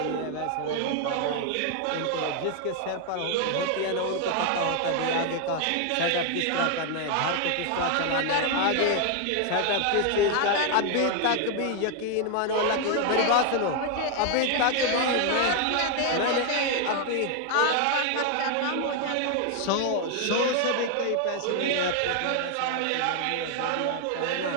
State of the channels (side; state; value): both; different; correlation 0.00